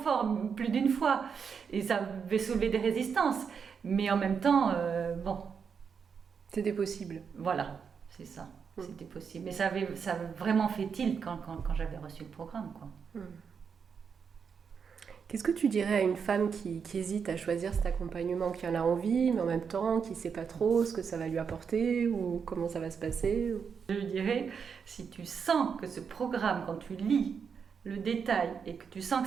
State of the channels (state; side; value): quieter; left; 6.4 dB